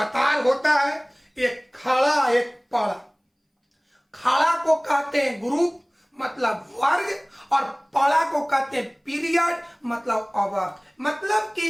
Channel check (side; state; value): both; identical; correlation 1.00